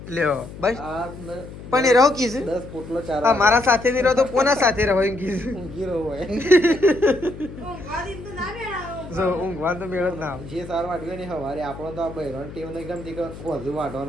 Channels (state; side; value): noise; left; hum, 14 dB below the sound